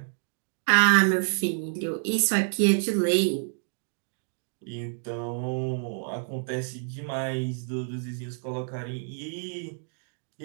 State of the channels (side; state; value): left; silent; digital silence